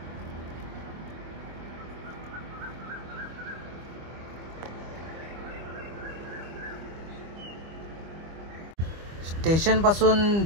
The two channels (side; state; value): left; late; 25 ms